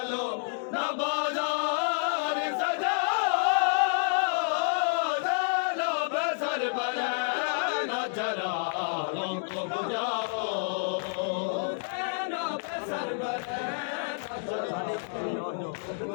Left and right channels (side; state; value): right; silent; digital silence